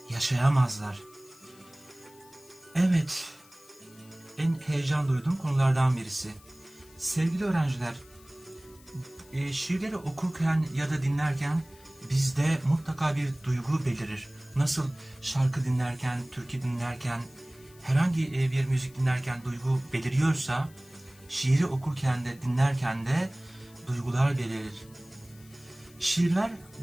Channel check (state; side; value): noise; left; hiss, 25 dB below the sound